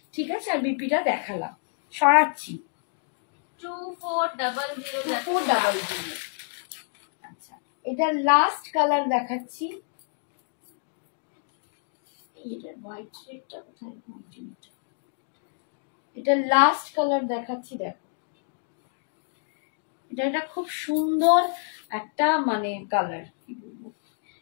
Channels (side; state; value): right; silent; digital silence